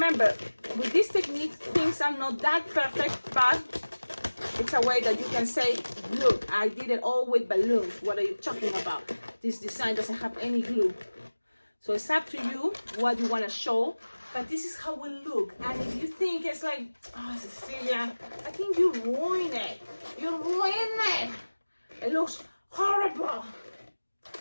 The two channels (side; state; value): both; inverted; correlation -1.00